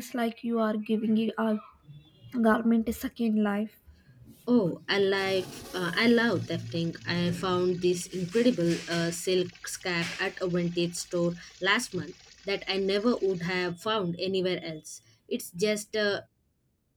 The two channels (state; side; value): identical; both; correlation 1.00